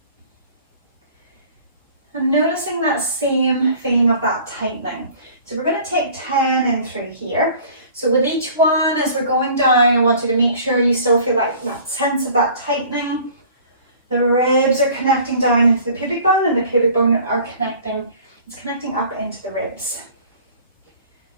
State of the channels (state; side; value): inverted; both; correlation -0.49